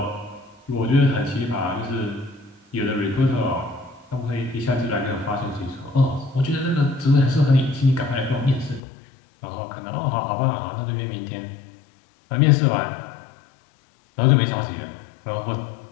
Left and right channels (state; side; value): drops out; right; at 8.8 s